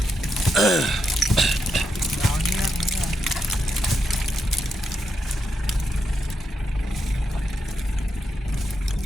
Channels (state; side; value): normal; both; correlation 0.83